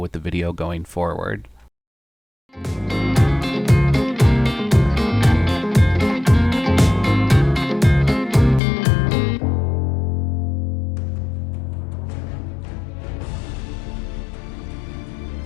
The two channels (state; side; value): drops out; right; at 8.6 s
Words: the video going forward.